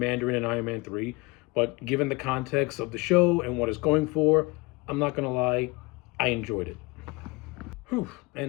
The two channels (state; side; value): quieter; right; 25.0 dB